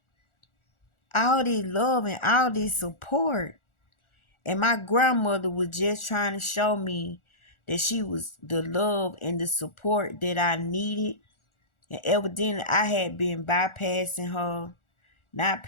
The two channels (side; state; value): right; late; 1.4 ms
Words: All this love and all this support. And my grandmother was just trying to show me that she was the love and the support that I needed. And evidently I had been bypassing her, not